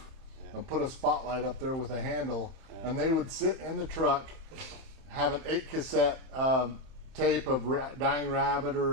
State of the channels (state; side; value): late; left; 31 ms